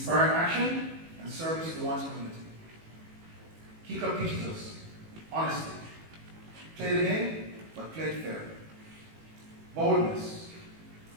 action and service to one's community. Key Club teaches us honesty. Play the game, but play it fair. Boldness.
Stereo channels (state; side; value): late; left; 18 ms